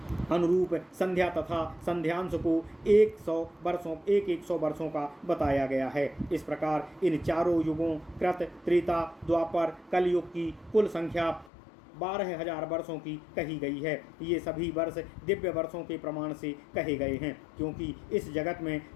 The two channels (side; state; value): right; drops out; at 11.5 s